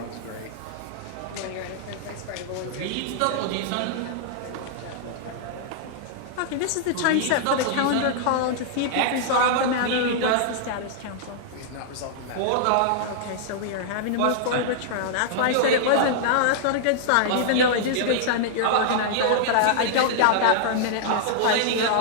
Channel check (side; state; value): both; different; correlation -0.01